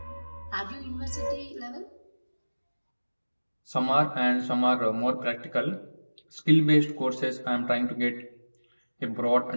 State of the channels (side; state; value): both; inverted; correlation -1.00